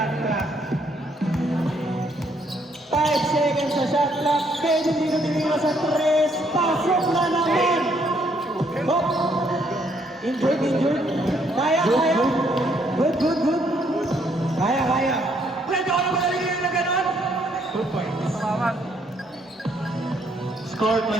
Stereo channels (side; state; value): both; normal; correlation 0.70